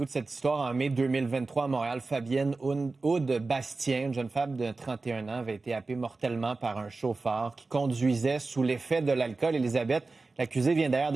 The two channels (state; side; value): quieter; left; 3.7 dB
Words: de cette histoire en mai 2023 à Montréal. Fabienne Aude Bastien, une jeune femme de 31 ans, avait été happée mortellement par un chauffeur qui conduisait sous l'effet de l'alcool. Élisabeth, l'accusé vient d'ailleurs